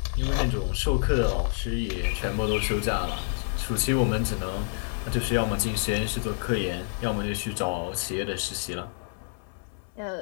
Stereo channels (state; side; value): silent; right; 59 dB below the other